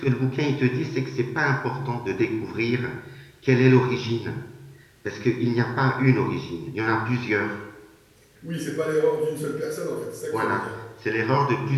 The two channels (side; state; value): both; identical; correlation 1.00